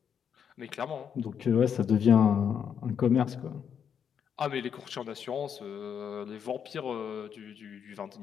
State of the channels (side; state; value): right; quieter; 7.8 dB